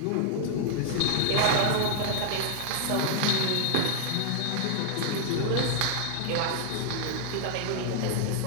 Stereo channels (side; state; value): both; different; correlation -0.01